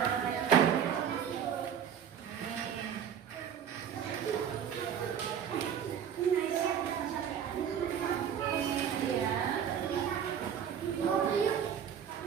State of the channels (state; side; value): quieter; left; 8.5 dB